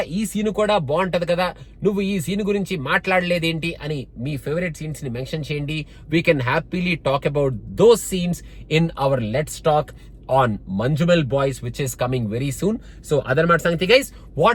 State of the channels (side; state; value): both; identical; correlation 1.00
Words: ఈ సీన్ కూడా బాగుంటది కదా, నువ్వు ఈ సీన్ గురించి మాట్లాడలేదేంటి అని మీ ఫేవరెట్ సీన్స్ ని మెన్షన్ చేయండి. We can happily talk about those scenes in our let's talk on Manjumal Boys, which is coming very soon. So adarmat sangathi guys,